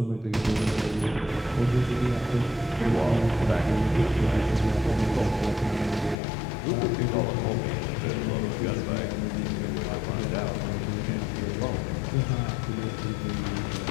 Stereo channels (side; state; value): right; drops out; at 6.2 s